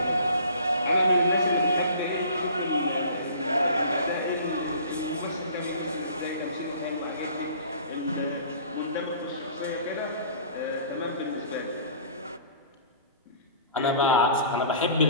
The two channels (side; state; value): both; inverted; correlation -0.47